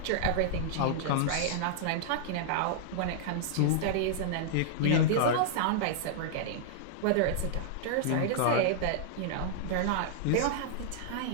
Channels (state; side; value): different; both; correlation -0.01